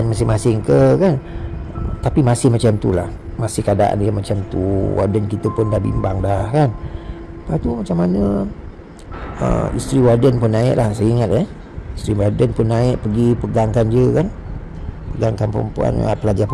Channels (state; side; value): identical; both; correlation 1.00